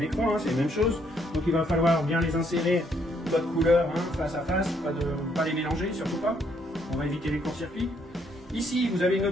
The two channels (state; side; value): normal; both; correlation 0.70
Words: écran, c'est la même chose. Donc il va falloir bien les insérer, votre couleur face à face, pas les mélanger, surtout pas. On va éviter les courts-circuits. Ici vous avez une